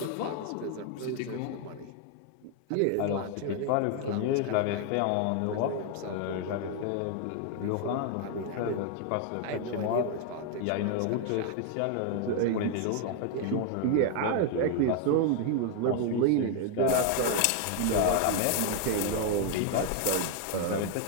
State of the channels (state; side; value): different; both; correlation 0.00